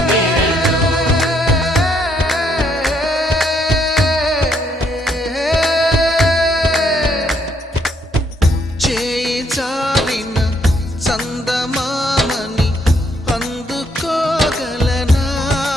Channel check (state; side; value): normal; both; correlation 0.71